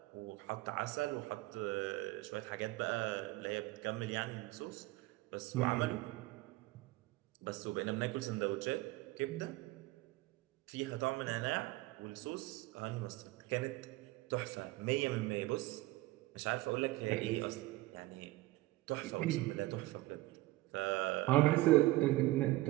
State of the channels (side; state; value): left; quieter; 18.7 dB